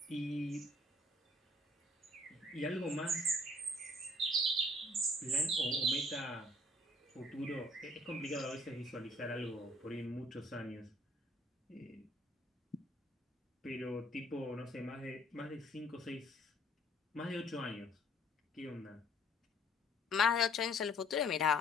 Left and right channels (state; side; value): normal; both; correlation 0.59